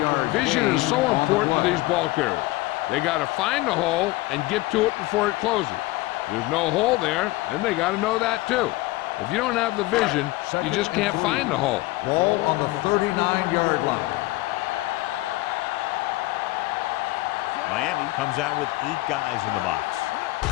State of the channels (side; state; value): right; quieter; 19.9 dB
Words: Vision is so important to these ball carriers. They got to find the hole and get to it before it closes. There's no hole there, and they got to know that too. If you don't have the vision, you just can't find the hole. Ball on the 39-yard line. Miami comes out with 8 guys in the box.